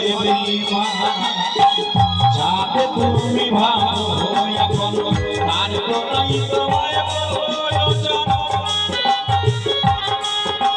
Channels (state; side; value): identical; both; correlation 1.00